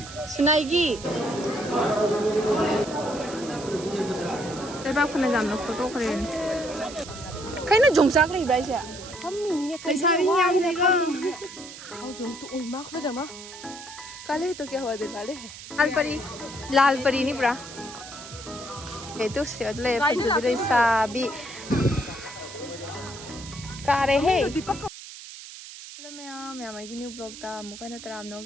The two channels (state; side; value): noise; right; hiss, 14 dB below the sound